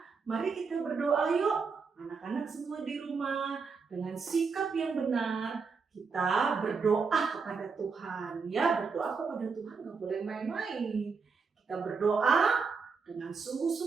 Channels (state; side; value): quieter; left; 5.1 dB